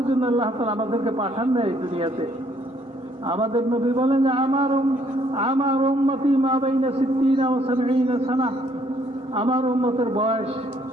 জন্য আল্লাহ তাআলা আমাদেরকে পাঠান না এই দুনিয়াতে। আমাদের নবী বলেন যে আমার উম্মতি মা বাইনা 60 ওয়া 70 সানা, আমার উম্মতের বয়স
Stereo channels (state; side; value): normal; both; correlation 0.66